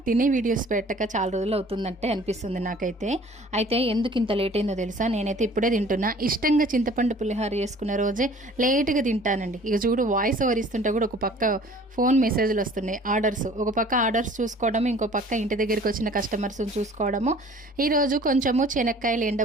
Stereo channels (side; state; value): both; normal; correlation 0.50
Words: తినే వీడియోస్ పెట్టక చాలా రోజులు అవుతుందంటే అనిపిస్తుంది నాకైతే. అయితే ఎందుకు ఇంత లేట్ అయిందో తెలుసా? నేనైతే ఇప్పుడే తింటున్నా. ఇష్టంగా చింతపండు పులిహోర చేసుకున్న రోజే లేట్గా తింటానండి. ఇక చూడు, వాయిస్ ఓవర్ ఇస్తుంటే కూడా ఒక పక్క ఫోన్ మెసేజ్లు వస్తున్నాయి, ఆర్డర్స్. ఒక పక్క ఆర్డర్స్ చూసుకోవడము, ఇంకో పక్క ఇంటి దగ్గరికి వచ్చిన కస్టమర్స్ని చూసుకోవడము. ఈరోజు కొంచెము శనక్కాయలు